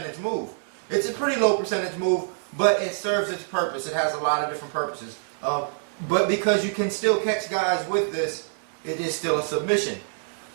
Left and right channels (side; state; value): left; silent; digital silence